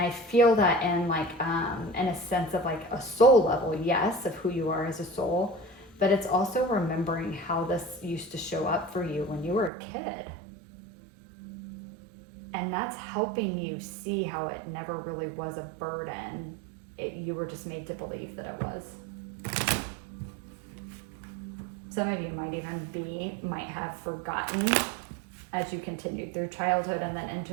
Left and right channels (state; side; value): drops out; left; at 9.7 s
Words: feel that in like in a sense of like a soul level, yes, of who you are as a soul, but it's also remembering how this used to show up for you when you were a kid. And that's helping you see how it never really was a burden. You were just made to believe that it was. Some of you might have forgotten as you continued through childhood and then